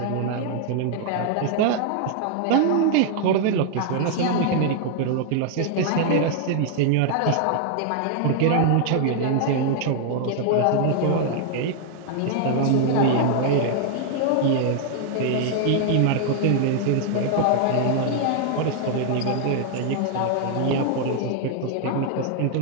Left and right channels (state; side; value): different; both; correlation 0.00